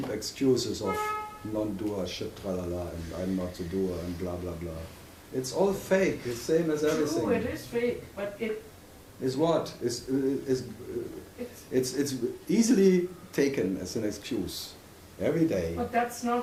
excuses of non-doer shit, tralala, and I'm not the doer, and blah blah blah. It's all fake. It's same as everything. True, it is fake, but it is what? It's easily taken as an excuse every day. But that's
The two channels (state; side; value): identical; both; correlation 1.00